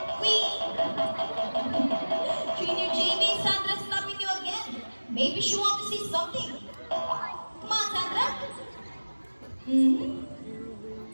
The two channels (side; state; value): both; inverted; correlation -1.00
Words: we... Trainer JB, Sandra's stopping you again. Maybe she wants to see something. Come on, Sandra.